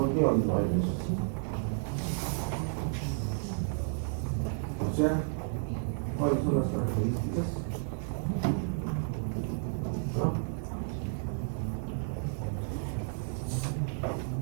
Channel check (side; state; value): left; silent; 56 dB below the other